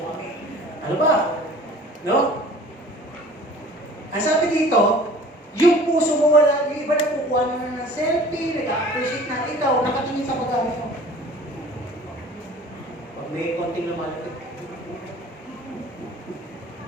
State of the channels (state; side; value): normal; both; correlation 0.47